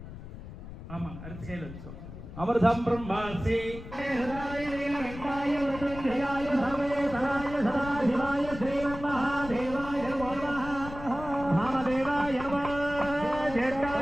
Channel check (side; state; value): left; noise; rumble, 12 dB below the sound